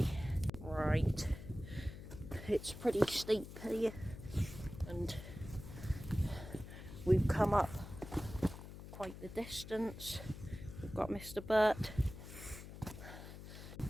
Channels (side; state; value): left; noise; hum, 12 dB below the sound